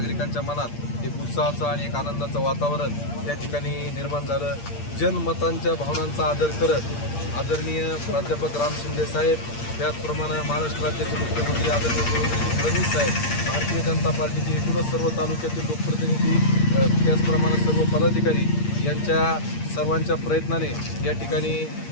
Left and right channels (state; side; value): late; right; 8.6 ms